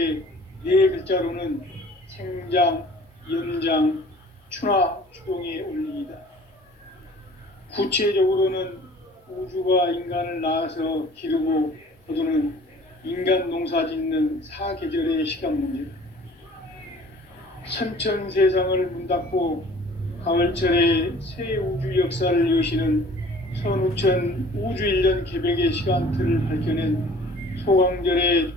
네 글자로는 생장, 연장, 추나 추동의 원리이다. 구체적으로는 우주가 인간을 낳아서 기르고 거두는 인간 농사 짓는 사계절의 시간 문제. 선천 세상을 문 닫고 가을철에 새 우주 역사를 여시는 선우천 우주 1년 개백의 시간틀을 밝혀낸 소강절의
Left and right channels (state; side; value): normal; both; correlation 0.50